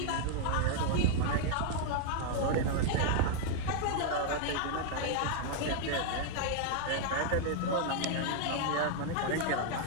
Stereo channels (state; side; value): different; both; correlation 0.00